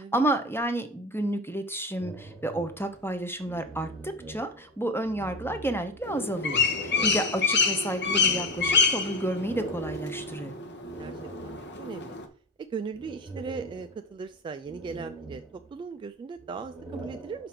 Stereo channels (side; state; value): both; normal; correlation 0.25